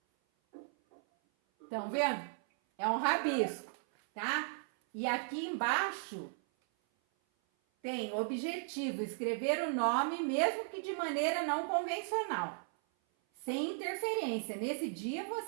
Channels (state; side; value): silent; left; 54 dB below the other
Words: Estão vendo? É um rabisco, tá? E aqui embaixo tem objetivo, escrever o nome, mesmo que de maneira não convencional, sem interferência. Nesse dia